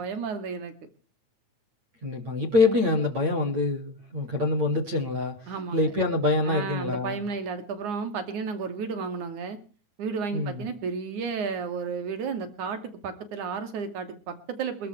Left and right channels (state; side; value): late; left; 8.8 ms